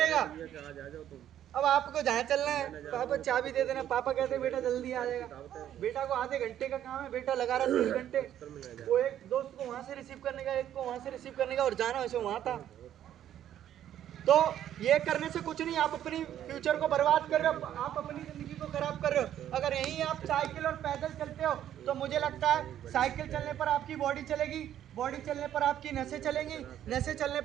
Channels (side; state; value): left; quieter; 11.1 dB